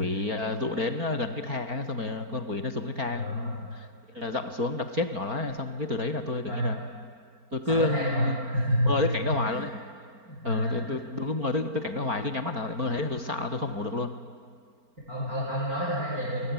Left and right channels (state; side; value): late; left; 4.4 ms